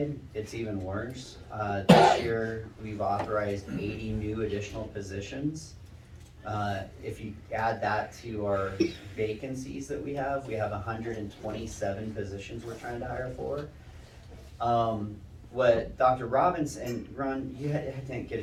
it's even worse. This year, we've authorized 80 new additional positions. If you add that to our vacancies that we have 127 positions we're trying to hire for. What Dr. Robinson, and Ron, you didn't get a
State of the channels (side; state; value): both; identical; correlation 1.00